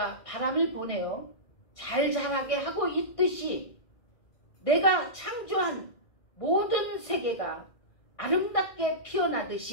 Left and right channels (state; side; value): late; right; 1.5 ms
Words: 바람을 보내어 잘 자라게 하고 있듯이 내가 창조한 모든 세계가 아름답게